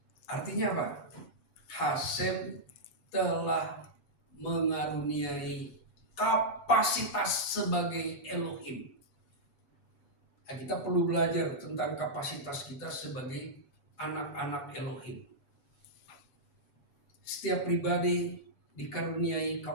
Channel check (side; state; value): right; late; 7.0 ms